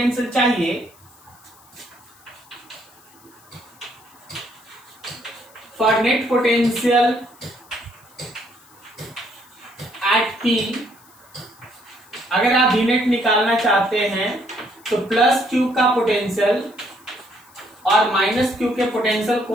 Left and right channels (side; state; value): left; noise; hiss, 27 dB below the sound